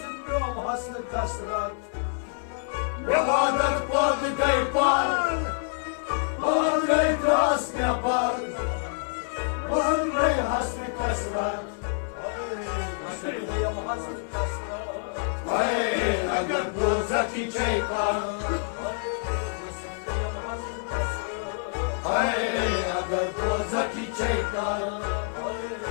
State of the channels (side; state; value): right; silent; digital silence